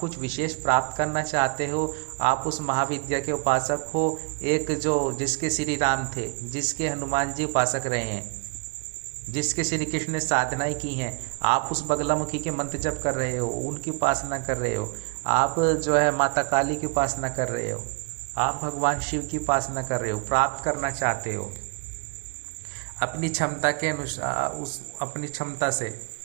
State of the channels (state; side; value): quieter; left; 33.4 dB